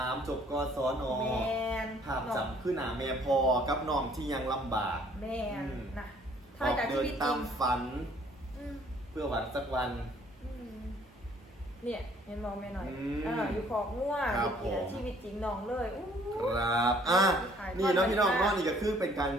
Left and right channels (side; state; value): both; normal; correlation 0.59